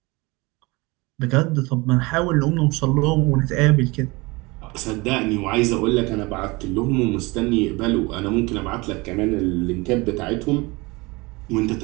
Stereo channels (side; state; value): left; quieter; 24.4 dB